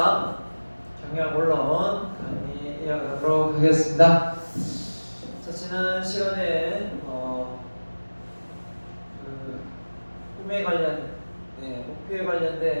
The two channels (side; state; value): both; inverted; correlation -1.00